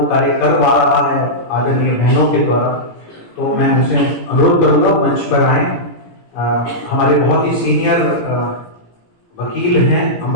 कार्य करवा रहा है आदरणीय बहनों के द्वारा। तो मैं उनसे अनुरोध करूंगा मंच पर आए। हमारे बहुत ही सीनियर वकील हैं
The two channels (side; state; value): right; late; 17 ms